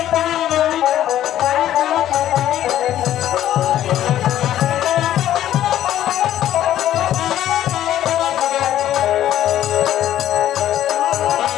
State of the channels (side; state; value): right; quieter; 12.2 dB